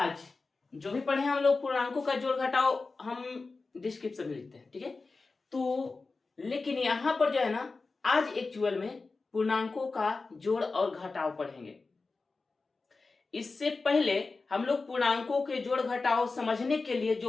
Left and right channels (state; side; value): quieter; right; 3.9 dB